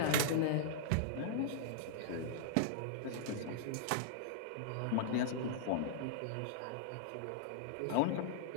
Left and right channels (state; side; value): different; both; correlation -0.02